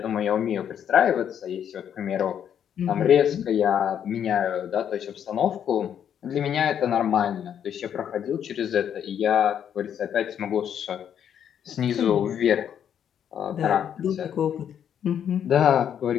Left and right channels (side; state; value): right; quieter; 9.0 dB